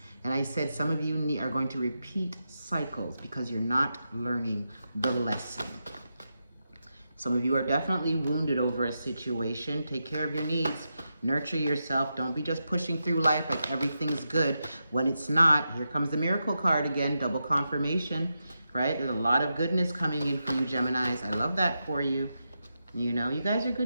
And I said some of you are going to repeat cycles because you're not learning the lesson. Some of you are definitely wounded over a situation. Take care of your needs. Nurture yourself. Don't be just pushing through life like everything's good when it's not. Here comes the miracle card again, double confirmation, right? There's a lot of goodness coming in for you, Geminis. I love that for you. You know, you guys are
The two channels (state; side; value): inverted; both; correlation -0.88